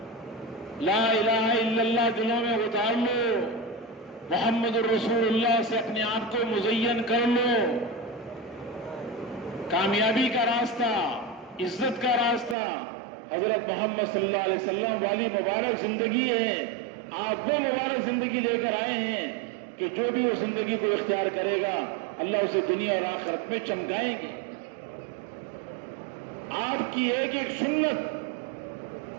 لا الہ الا اللہ دلوں میں اتار لو، محمد الرسول اللہ سے اپنے آپ کو مزین کر لو. کامیابی کا راستہ، عزت کا راستہ حضرت محمد صلی اللہ علیہ وسلم والی مبارک زندگی ہے. آپ وہ مبارک زندگی لے کر آئے ہیں کہ جو بھی اس زندگی کو اختیار کرے گا اللہ اسے دنیا اور آخرت میں چمکائیں گے. آپ کی ایک ایک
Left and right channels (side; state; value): left; drops out; at 12.6 s